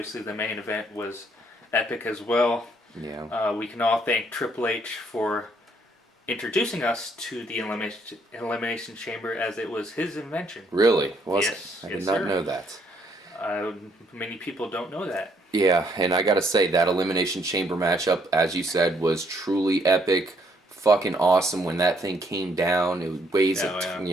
the main event was epic as well. Yeah. We can all thank Triple H for introducing us to the Elimination Chamber, as it was his invention. Really? Yes. I did not know that. Many people don't know that. Yeah, and I gotta say, that Elimination Chamber matchup, as you said, was truly epic. Fucking awesome when that thing came down. It weighs,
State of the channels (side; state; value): both; normal; correlation 0.68